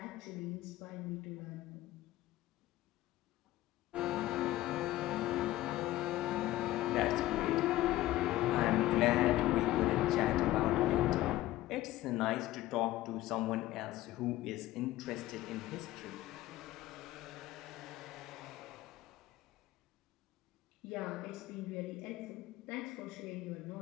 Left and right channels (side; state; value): right; quieter; 16.0 dB